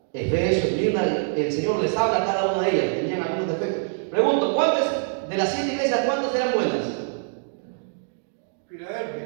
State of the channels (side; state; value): left; silent; digital silence